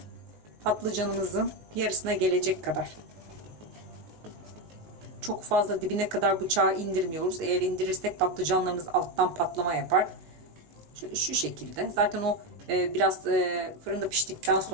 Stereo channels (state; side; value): late; left; 19 ms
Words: patlıcanımızın yarısına gelecek kadar, çok fazla dibine kadar bıçağı indirmiyoruz. Eğer indirirsek patlıcanlarımız alttan patlama yapar. Şöyle şu şekilde. Zaten o biraz fırında piştikten